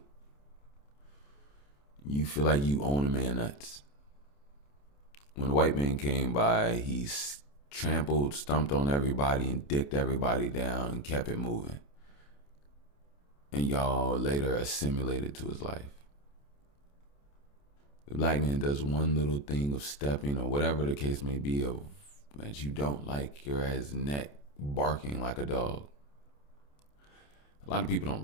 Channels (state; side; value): late; right; 28 ms